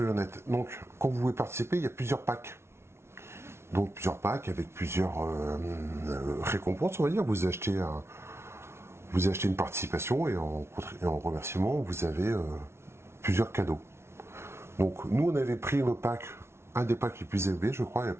honnêtes, donc, quand vous voulez participer, il y a plusieurs packs. Donc, plusieurs packs avec plusieurs récompenses, on va dire. Vous achetez une participation et en remerciement, vous avez plusieurs cadeaux. Donc, nous, on avait pris le pack, un des packs les plus élevés, je crois, à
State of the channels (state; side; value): late; left; 0.12 ms